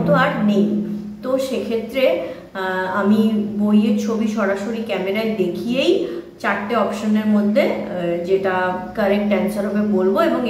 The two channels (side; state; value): both; identical; correlation 1.00